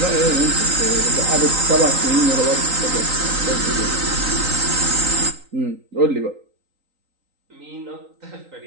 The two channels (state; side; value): late; left; 3.9 ms